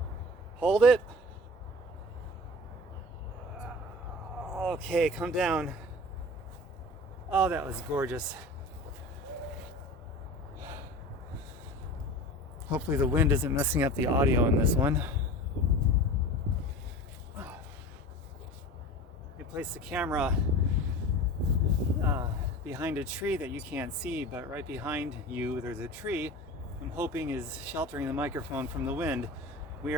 Hold it. Okay, come down. Oh, that was gorgeous. Hopefully the wind isn't messing up the audio in this one. You place the camera behind a tree that you can't see, but right behind you there's a tree I'm hoping is sheltering the microphone from the wind. We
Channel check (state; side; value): normal; both; correlation 0.36